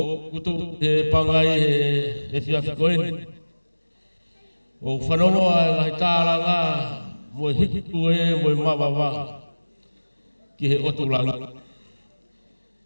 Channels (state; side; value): inverted; both; correlation -1.00